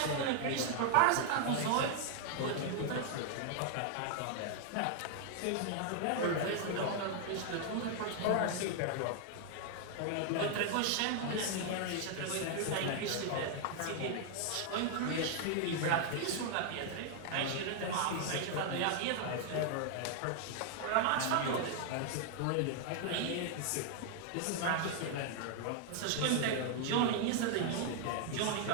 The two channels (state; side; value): different; both; correlation 0.00